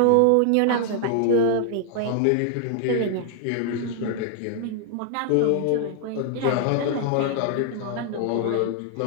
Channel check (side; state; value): both; different; correlation 0.00